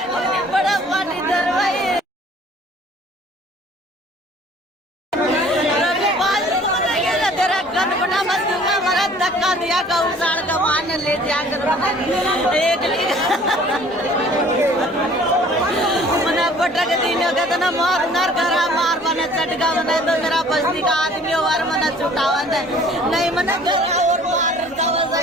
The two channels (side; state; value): both; normal; correlation 0.52